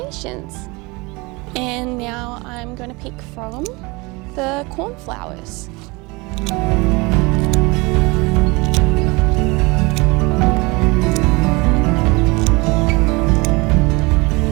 And now I'm going to pick from the cornflowers.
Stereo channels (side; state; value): left; quieter; 25.4 dB